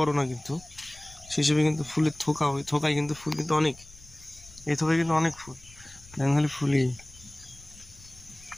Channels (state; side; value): noise; left; rumble, 22 dB below the sound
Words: না, কিন্তু সেই হিসেবে কিন্তু ফুলের থোকা, ওই থোকায় কিন্তু ফুল কিন্তু অনেক, এই থোকায় কিন্তু অনেক ফুল। দেখুন খালি ফুলই,